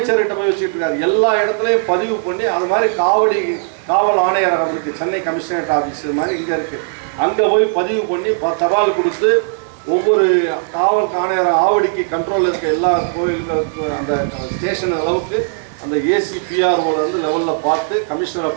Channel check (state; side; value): silent; left; digital silence